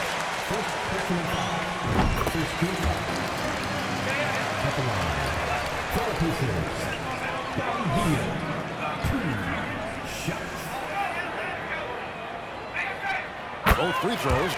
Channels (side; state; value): both; identical; correlation 1.00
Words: Both free throws